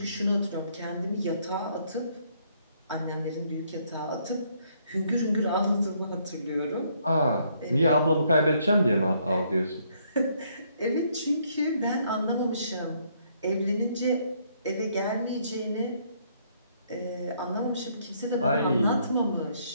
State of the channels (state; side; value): inverted; both; correlation -0.69